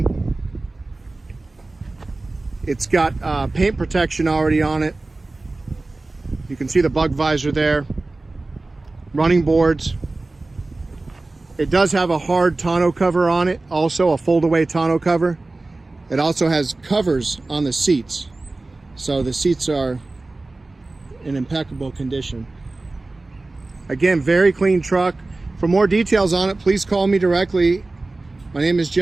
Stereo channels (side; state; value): left; quieter; 3.2 dB